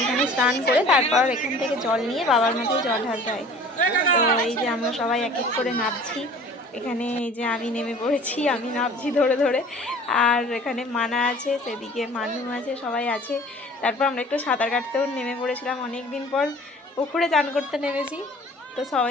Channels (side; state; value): both; normal; correlation 0.47